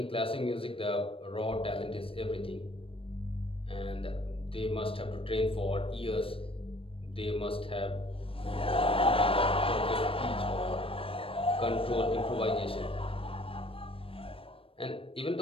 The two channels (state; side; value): late; right; 0.27 ms